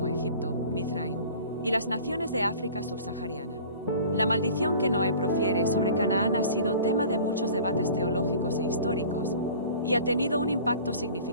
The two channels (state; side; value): inverted; both; correlation -0.44